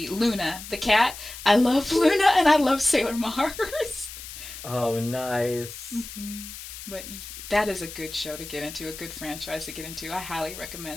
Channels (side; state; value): left; noise; hiss, 12 dB below the sound